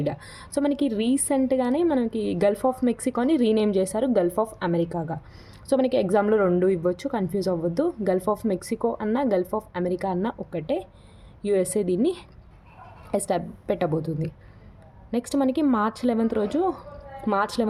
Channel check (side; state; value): both; identical; correlation 1.00